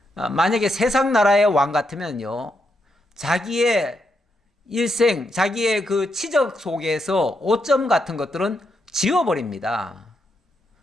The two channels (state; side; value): normal; both; correlation 0.81